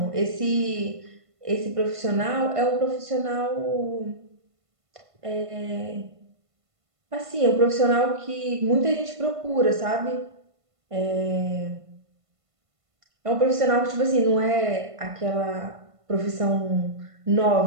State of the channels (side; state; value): left; late; 1.5 ms